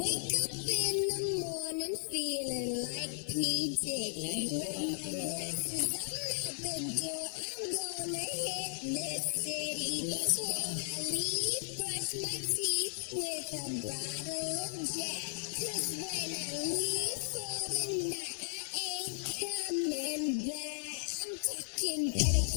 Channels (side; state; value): right; silent; 54 dB below the other